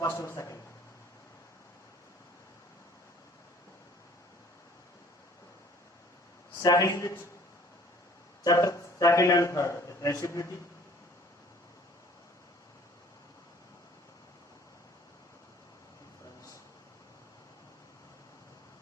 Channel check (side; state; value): both; normal; correlation 0.53